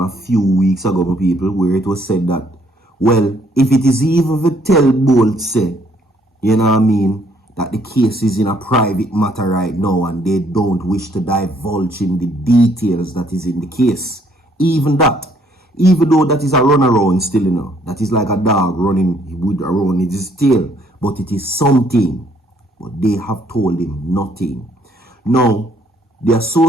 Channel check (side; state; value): both; normal; correlation 0.66